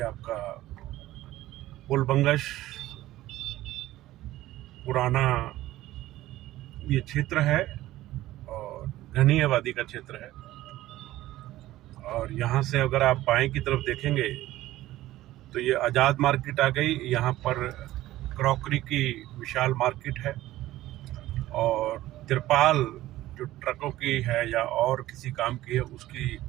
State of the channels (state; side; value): quieter; left; 15.6 dB